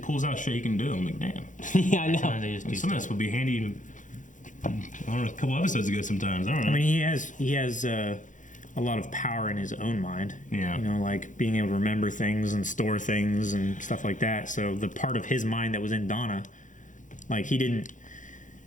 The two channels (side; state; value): right; late; 0.37 ms